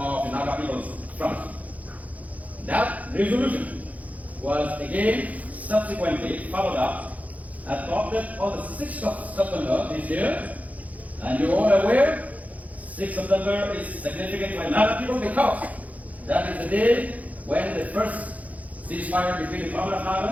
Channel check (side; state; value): left; late; 0.073 ms